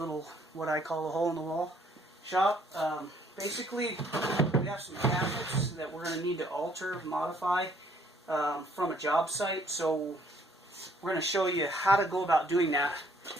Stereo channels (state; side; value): normal; both; correlation 0.64